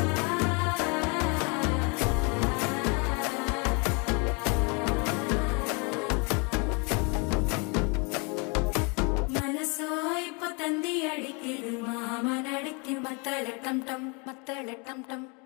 മനസ്സോ ഇപ്പൊ തന്തി അടിക്കിത് മാമനടിക്ക് മത്തള ടം ടം മത്തള ടം ടം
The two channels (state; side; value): quieter; right; 32.3 dB